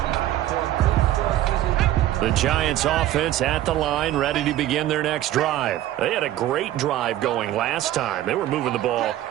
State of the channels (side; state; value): left; quieter; 13.6 dB